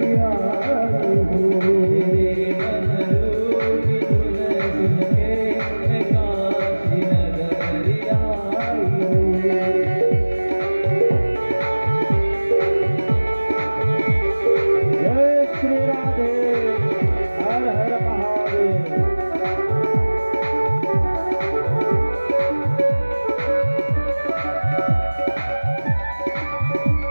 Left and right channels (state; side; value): inverted; both; correlation -1.00